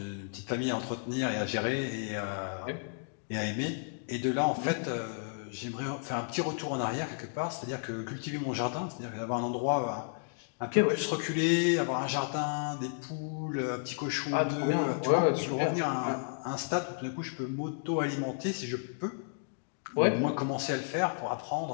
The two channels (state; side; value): silent; right; digital silence